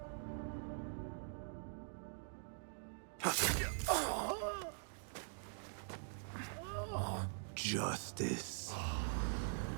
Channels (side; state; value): left; silent; digital silence